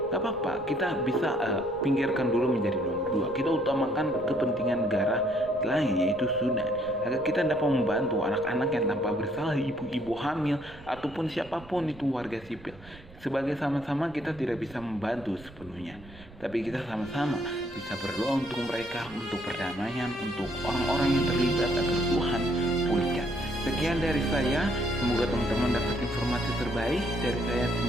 gak apa-apa, kita bisa pinggirkan dulu menjadi nomor 2. Kita utamakan kepentingan negara lain, yaitu Sudan, agar kita dapat membantu anak-anak yang tanpa bersalah, ibu-ibu hamil, ataupun siapapun itu warga sipil. Sebagai sama-sama kita tidak bisa membantu sepenuhnya, tapi kita sama-sama bisa berdoa untuk mereka, untuk perdamaian, untuk orang-orang yang terlibat agar Tuhan pulihkan. Sekian dari saya, semoga teman-teman dapat informasi terbaik dari saya.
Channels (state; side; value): noise; right; rumble, 20 dB below the sound